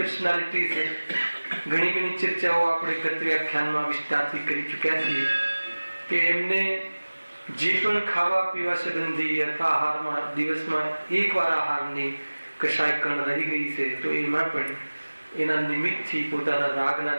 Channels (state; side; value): inverted; both; correlation -1.00